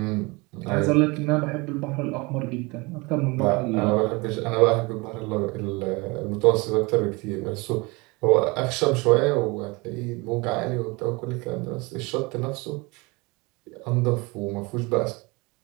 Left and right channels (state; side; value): quieter; left; 25.9 dB